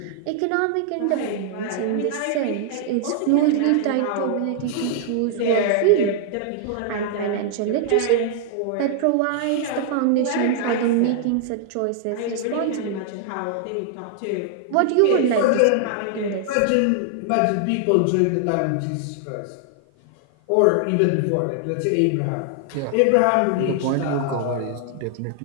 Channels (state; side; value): different; both; correlation 0.00